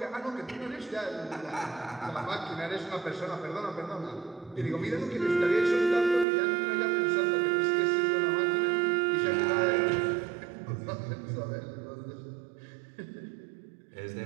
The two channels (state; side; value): drops out; left; at 6.2 s